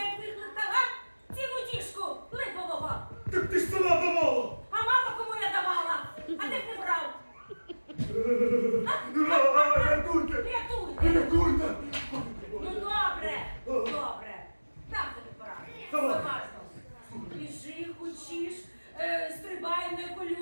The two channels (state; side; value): inverted; both; correlation -1.00